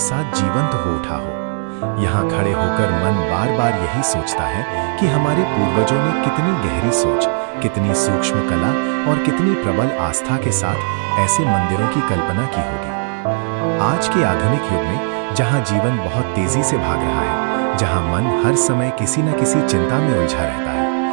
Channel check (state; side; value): silent; left; 61 dB below the other